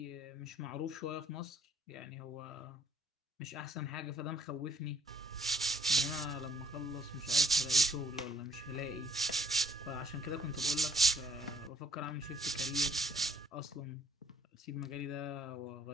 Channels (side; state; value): both; normal; correlation 0.67